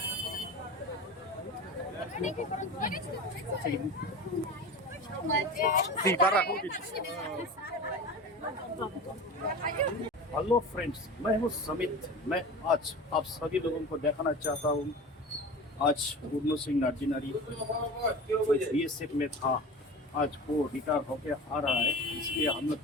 हेलो फ्रेंड्स, मैं हूँ समित। मैं आज आप सभी लोगों को दिखाना चाहता हूँ। आज पूर्ण सिंह नार्जिनारी बीएसएफ में था, आज वो रिटायर होके आ रहा है, इसलिए हम लोग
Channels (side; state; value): both; normal; correlation 0.33